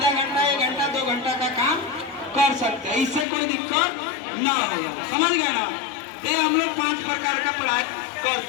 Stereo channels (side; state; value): right; drops out; at 3.2 s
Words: घंटा, 1 घंटा, 2 घंटा का काम कर सकते हैं, इससे कोई दिक्कत ना होगा। समझ गए ना, ये हम लोग 5 प्रकार का पढ़ाई